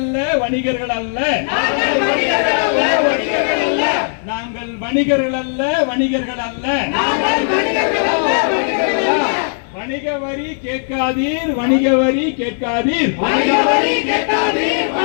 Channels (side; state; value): right; silent; 62 dB below the other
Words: வணிகர்கள் அல்ல நாங்கள் வணிகர்கள் அல்ல வணிகர்கள் அல்ல நாங்கள் வணிகர்கள் அல்ல வணிகர்கள் அல்ல நாங்கள் வணிகர்கள் அல்ல வணிகர்கள் அல்ல வணிக வரி கேட்காதீர், வணிக வரி கேட்காதீர், வணிக வரி கேட்காதீர்,